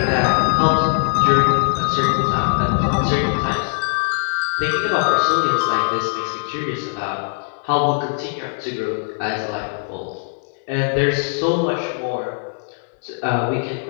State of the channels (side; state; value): right; silent; 65 dB below the other